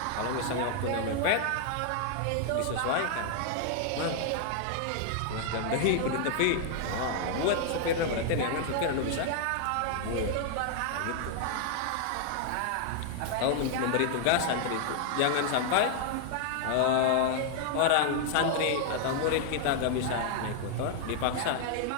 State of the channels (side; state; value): both; different; correlation 0.00